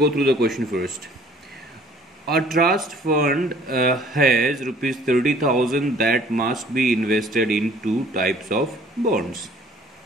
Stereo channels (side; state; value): both; normal; correlation 0.55